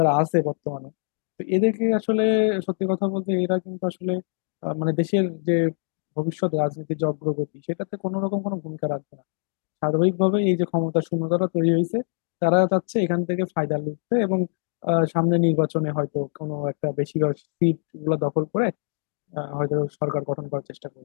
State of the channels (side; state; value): right; silent; digital silence